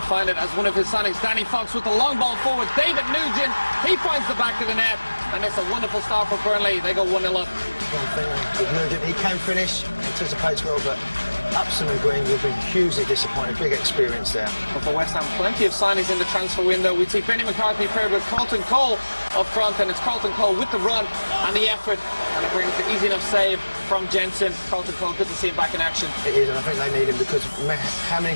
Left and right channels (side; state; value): both; inverted; correlation -1.00